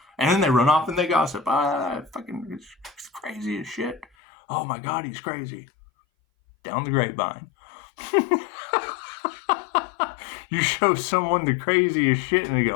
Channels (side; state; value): right; drops out; at 4.0 s